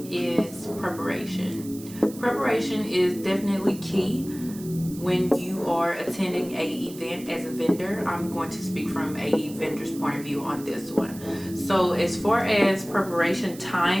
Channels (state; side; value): noise; right; hiss, 17 dB below the sound